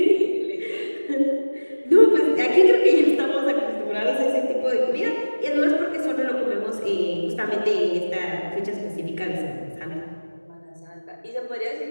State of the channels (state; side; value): inverted; both; correlation -1.00